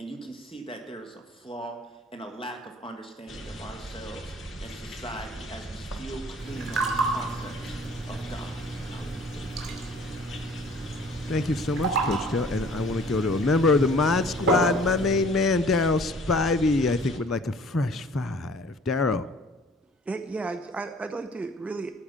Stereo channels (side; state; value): both; normal; correlation 0.52